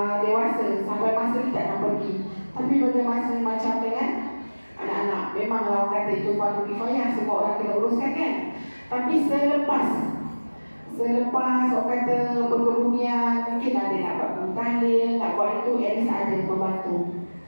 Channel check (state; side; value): inverted; both; correlation -1.00